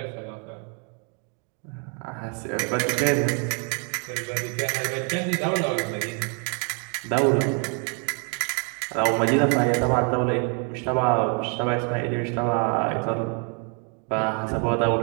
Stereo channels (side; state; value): left; quieter; 38.4 dB